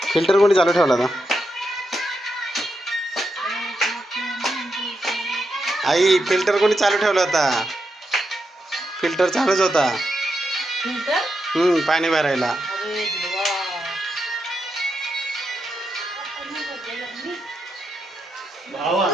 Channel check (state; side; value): normal; both; correlation 0.84